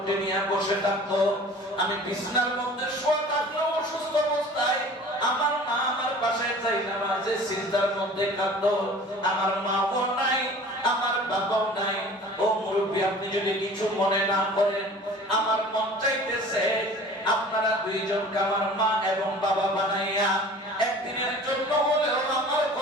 নিয়ে বসে থাকতো। আমি বিছানার মধ্যে শোয়া থাকলেও অসুস্থ অবস্থায় আমার মা আমার পাশে যাই নামাজে সিজদার মধ্যে কাঁদতো। আমার মাও নাই, আমার বাবাও নাই। ও মুরব্বী, আপনি যদি কিছু মনে না করেন, আমার মন চাইতেছে আপনারা 2 জনকে আমার মা এবং বাবা বানাইয়া একদিনের জন্য হলেও আমার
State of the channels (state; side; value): normal; both; correlation 0.44